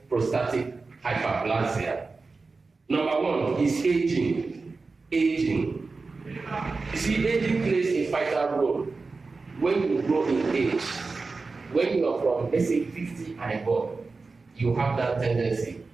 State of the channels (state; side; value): quieter; left; 4.0 dB